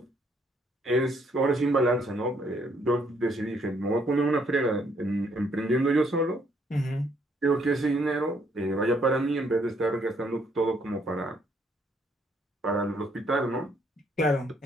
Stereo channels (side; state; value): both; normal; correlation 0.69